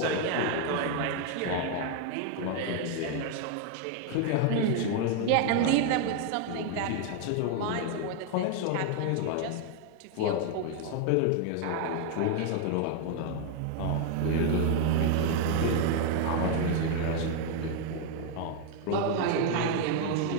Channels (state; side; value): different; both; correlation 0.00